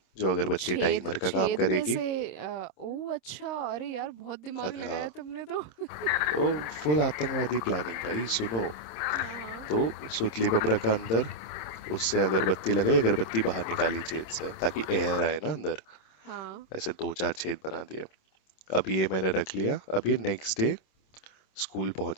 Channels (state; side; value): late; right; 26 ms